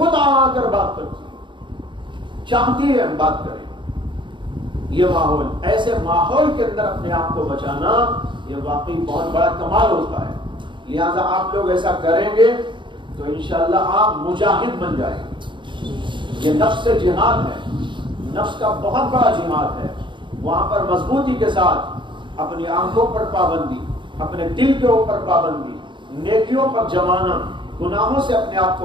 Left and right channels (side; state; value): left; late; 0.23 ms